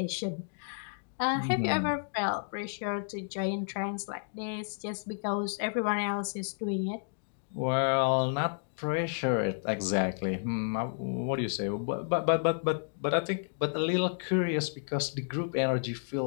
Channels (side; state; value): right; silent; digital silence